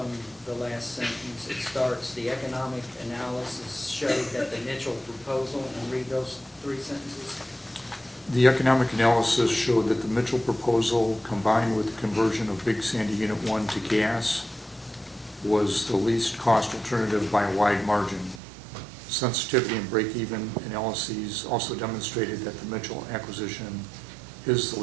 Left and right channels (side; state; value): left; drops out; at 18.4 s